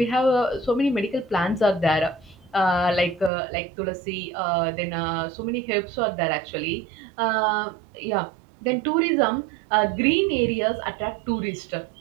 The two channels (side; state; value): left; drops out; at 3.3 s